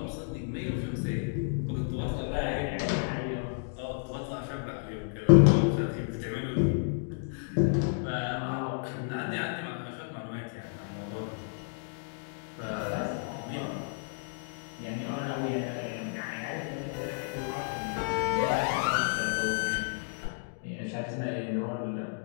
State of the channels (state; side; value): silent; right; digital silence